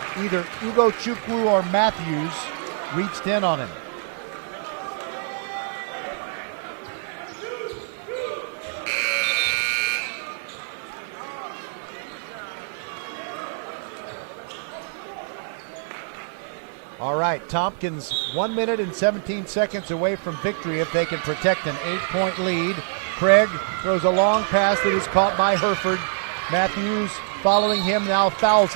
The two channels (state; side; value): silent; left; 62 dB below the other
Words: Either Ugo Chukwu or Matthews reached in on him. All right, Tompkins 1 minute and 17 seconds away from victory if they can protect an 8-point lead. Craig throws a long pass that is caught by Herford. Matthews following him now fouls